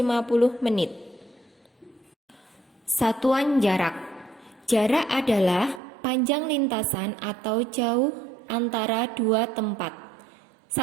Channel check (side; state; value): left; drops out; at 5.8 s